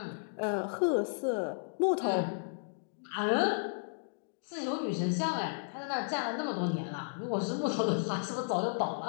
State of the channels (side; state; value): right; silent; digital silence